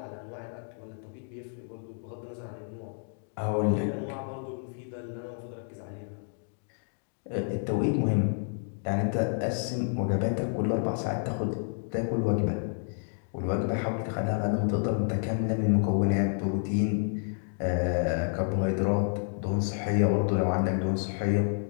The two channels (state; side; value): silent; right; 58 dB below the other